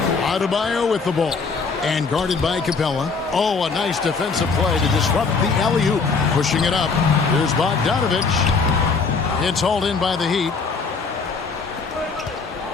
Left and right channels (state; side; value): quieter; right; 4.8 dB